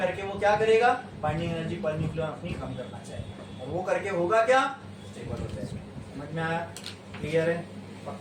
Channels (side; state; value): both; identical; correlation 1.00